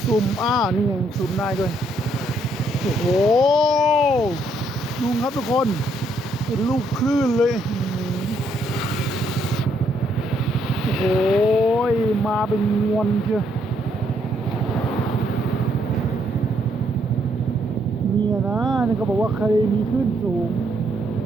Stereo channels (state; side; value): normal; both; correlation 0.72